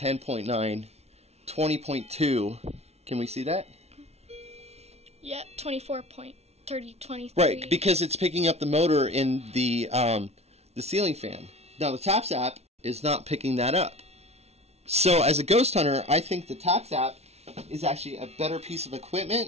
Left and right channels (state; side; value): late; left; 0.31 ms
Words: 20.2, can we see that? Yeah, 24.30, 23. Right, because it's picking up the motor in the ceiling fan. Now the T.A.P.S app is not picking that up. So as a ghost hunter, I think the T.A.P.S app is actually a better piece of